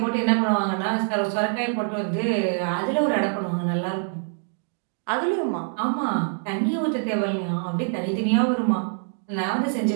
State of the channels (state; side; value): silent; left; 62 dB below the other